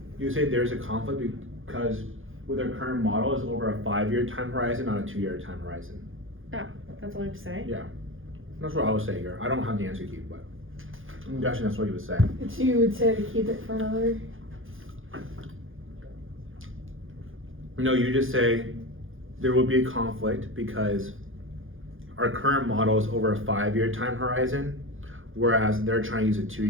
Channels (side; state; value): left; late; 0.59 ms